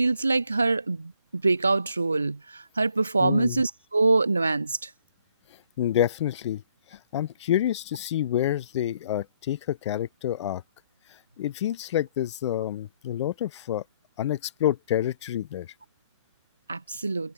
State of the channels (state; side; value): inverted; both; correlation -0.68